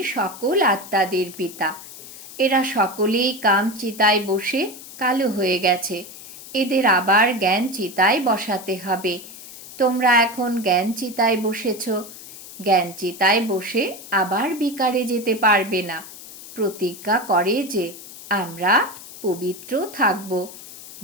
সকল আত্মাদের পিতা। এরা সকলেই কাম চিতায় বসে কালো হয়ে গেছে। এদের আবার জ্ঞান চিতায় বসাতে হবে। তোমরা এখন জ্ঞান চিতায় বসেছ। জ্ঞান চিতায় বসে আবার বিকারে যেতে পারবে না। প্রতিজ্ঞা করে যে আমরা পবিত্র থাকব।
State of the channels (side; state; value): left; noise; hiss, 15 dB below the sound